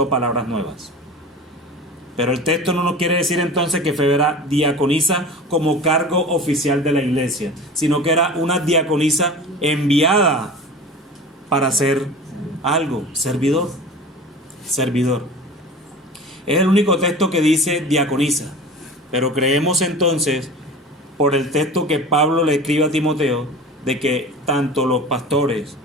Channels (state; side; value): normal; both; correlation 0.36